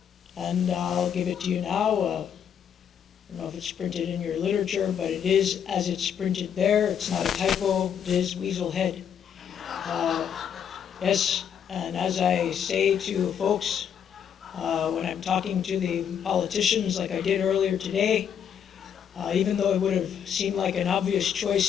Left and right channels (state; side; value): quieter; right; 8.3 dB